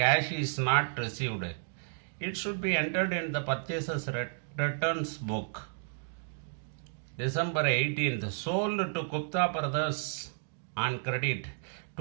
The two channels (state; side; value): silent; left; digital silence